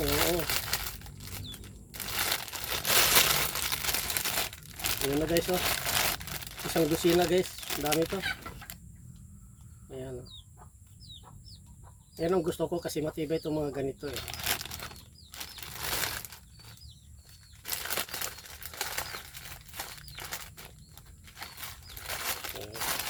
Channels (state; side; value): identical; both; correlation 1.00